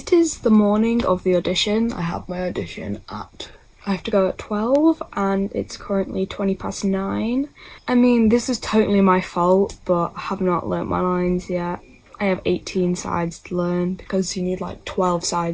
is the morning of the audition. I have my audition I have to go at 12 and it's currently 9:20. I mean, this is totally my fault, but I have not learnt my lines yet. I have 18 sides to learn because you need like 12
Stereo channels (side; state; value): both; identical; correlation 1.00